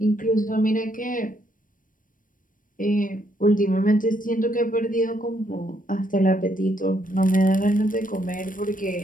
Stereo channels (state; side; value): late; right; 0.39 ms